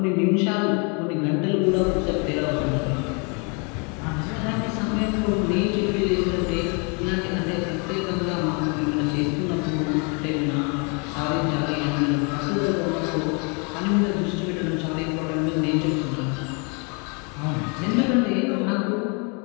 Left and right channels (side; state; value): right; quieter; 34.5 dB